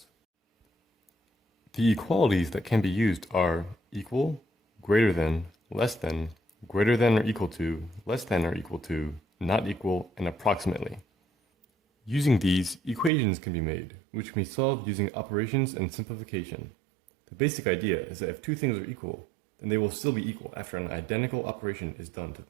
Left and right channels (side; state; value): left; drops out; at 13.1 s